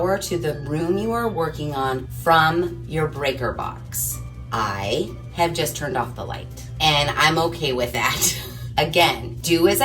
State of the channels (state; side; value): identical; both; correlation 1.00